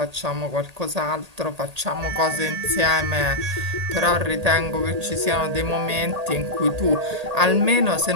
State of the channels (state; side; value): late; left; 1.8 ms